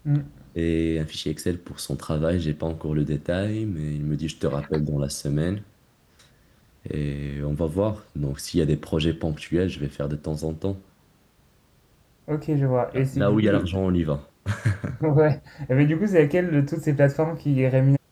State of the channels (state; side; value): identical; both; correlation 1.00